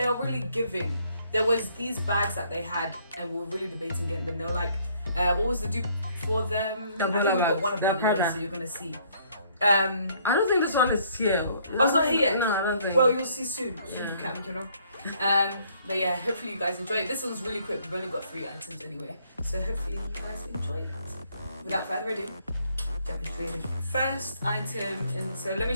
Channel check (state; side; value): inverted; both; correlation -0.64